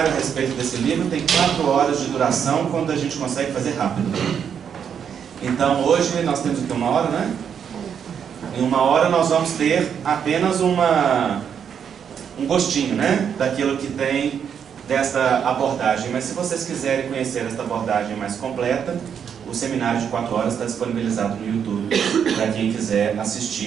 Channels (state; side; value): quieter; left; 7.8 dB